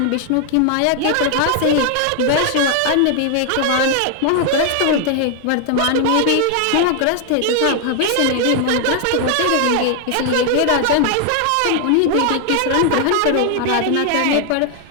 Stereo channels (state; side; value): different; both; correlation 0.00